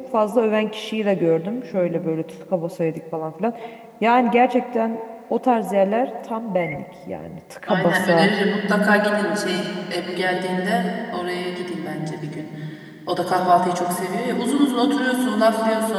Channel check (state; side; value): identical; both; correlation 1.00